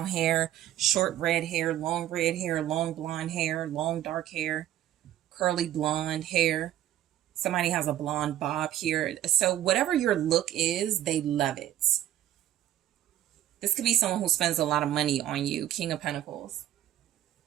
hair, short red hair, long blonde hair, long dark hair, curly blonde hair. Somebody has a blonde bob here. So whatever your look is, they love it. This could be someone who spends a lot of money on you. King of Pentacles.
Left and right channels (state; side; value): quieter; left; 12.5 dB